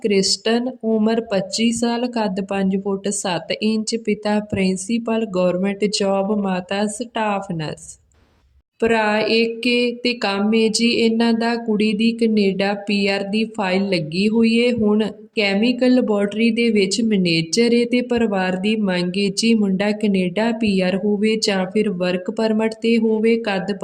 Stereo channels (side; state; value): both; identical; correlation 1.00